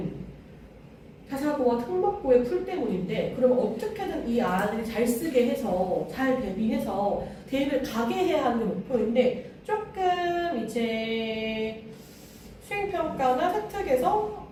자사고와 특목고의 풀 때문인데 그럼 어떻게든 이 아이들이 잘 쓰게 해서 잘 대비해서 대입을 가게 해야 하는 게 목표인데 조금 이제 수행평가나 세특에서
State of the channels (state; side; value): identical; both; correlation 1.00